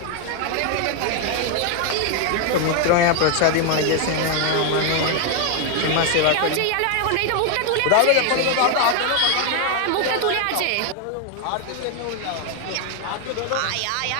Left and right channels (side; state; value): both; different; correlation 0.00